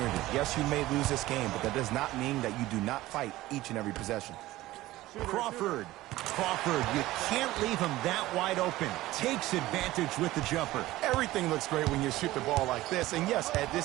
Yes, you may lose this game, but that does not mean that you do not fight each and every possession. Crawford, you can't leave him that wide open. Takes advantage with the jumper. Everything looks great when you shoot the ball like this. And yes, Ed,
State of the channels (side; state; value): left; quieter; 16.9 dB